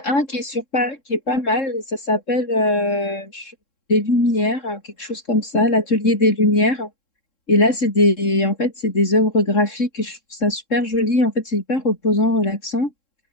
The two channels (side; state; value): right; late; 3.7 ms